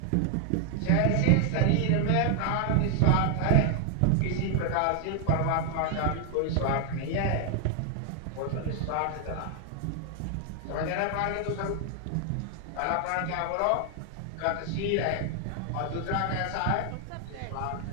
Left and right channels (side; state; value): both; different; correlation 0.00